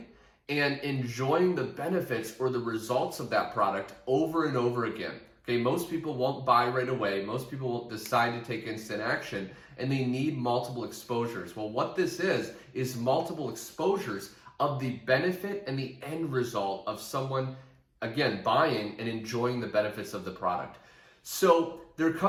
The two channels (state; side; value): identical; both; correlation 1.00